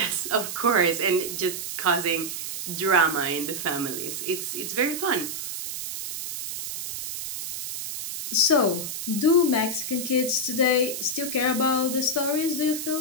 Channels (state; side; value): noise; right; hiss, 6 dB below the sound